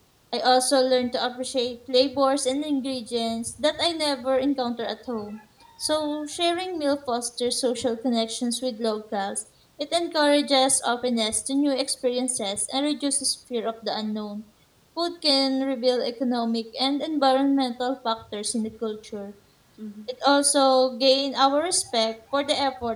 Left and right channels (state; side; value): identical; both; correlation 1.00